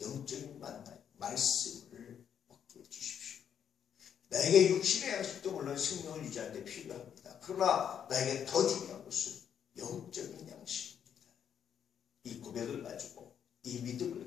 영적인 만나 말씀을 먹게 해주십시오. 나에게 육신의 양식도 물론 생명을 유지하는 데 필요합니다. 그러나 나에게 더 중요한 것은 영적인 양식입니다. 이 고백을 가지고 이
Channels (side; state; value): right; quieter; 8.5 dB